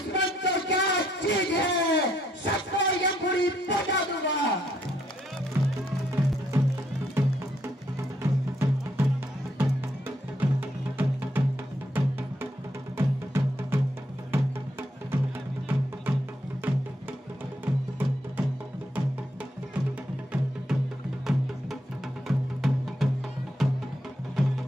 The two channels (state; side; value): normal; both; correlation 0.73